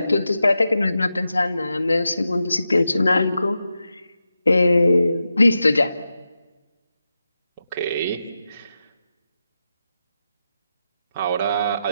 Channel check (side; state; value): both; inverted; correlation -0.90